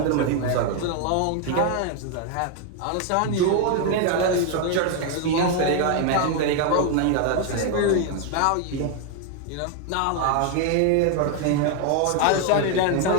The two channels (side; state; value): both; different; correlation 0.01